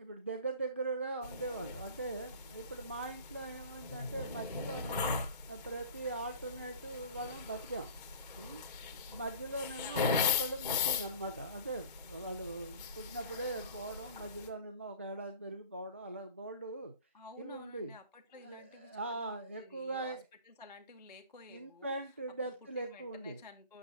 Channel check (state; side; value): inverted; both; correlation -0.40